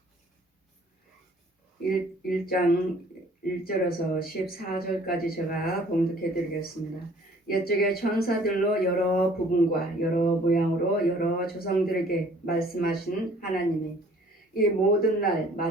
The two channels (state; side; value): normal; both; correlation 0.55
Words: 1장 1절에서 14절까지 제가 봉독해 드리겠습니다. 옛적에 천사들로 여러 부분과 여러 모양으로 여러 조상들에게 말씀하신 하나님이 이 모든 날